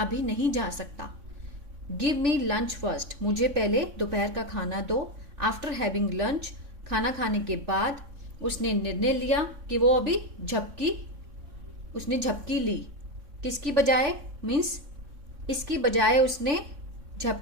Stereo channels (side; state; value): left; late; 3.6 ms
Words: नहीं जा सकता। गिव मी लंच फर्स्ट, मुझे पहले दोपहर का खाना दो। आफ्टर हैविंग लंच, खाना खाने के बाद उसने निर्णय लिया कि वो अभी झपकी, उसने झपकी ली, किसकी बजाय, मीन्स इसकी बजाय उसने